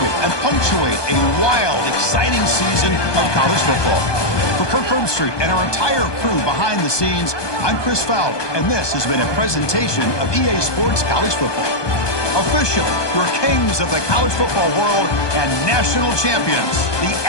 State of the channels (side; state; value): right; late; 1.2 ms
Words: and punctuate a wild, exciting season of college football. For Kirk Herbstreit and our entire crew behind the scenes, I'm Chris Fowler, and this has been a presentation of EA Sports College Football. Officially, your kings of the college football world and national champions, the